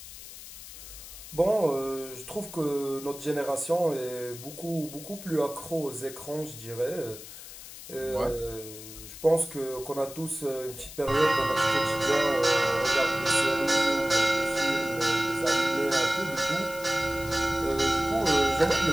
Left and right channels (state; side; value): noise; left; hiss, 14 dB below the sound